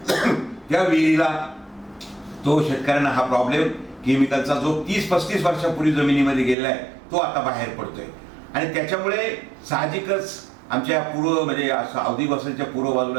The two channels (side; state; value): left; drops out; at 6.6 s